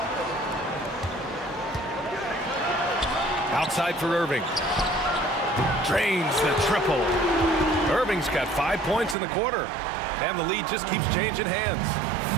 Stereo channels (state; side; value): drops out; left; at 9.2 s